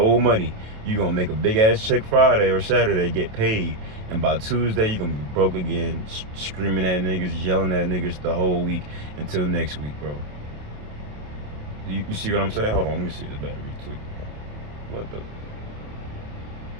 money. You gonna make a big ass check Friday or Saturday, get paid. And by Tuesday you gonna be broke again, screaming at niggas, yelling at niggas the whole week until next week, bro. You see what I'm saying? Hold on, let me see this battery tweak. What the?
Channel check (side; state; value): left; late; 28 ms